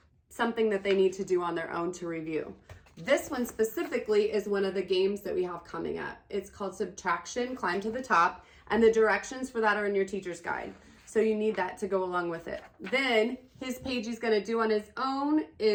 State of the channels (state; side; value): identical; both; correlation 1.00